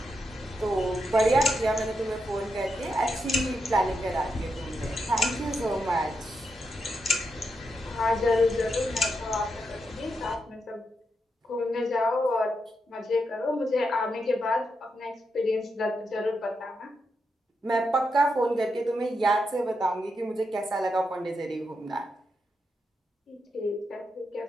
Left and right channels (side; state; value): both; normal; correlation 0.84